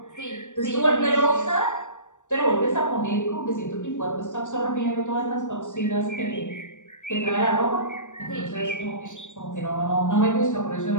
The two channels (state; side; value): late; right; 0.85 ms